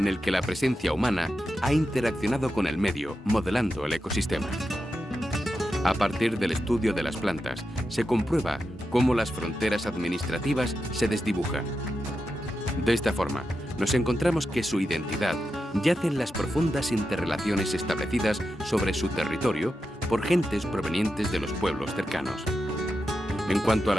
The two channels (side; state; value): both; normal; correlation 0.89